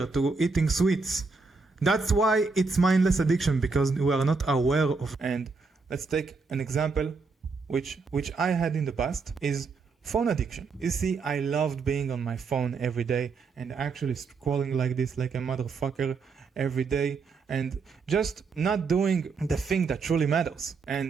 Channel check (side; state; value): left; quieter; 4.5 dB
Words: to eating sweets. That's why it's mindless addiction, because we are not aware of. And let's take an example which I had in the past, is phone addiction. You see, I loved being on my phone every day and actually scrolling like this, like a motherfucker every day, and just not doing the thing that truly matters.